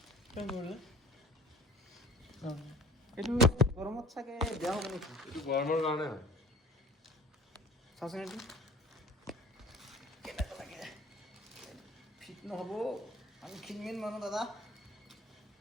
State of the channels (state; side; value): normal; both; correlation 0.48